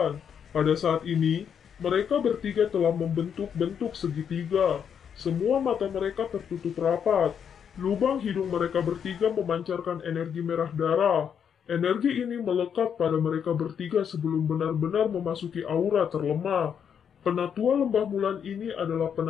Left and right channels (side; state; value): right; quieter; 7.8 dB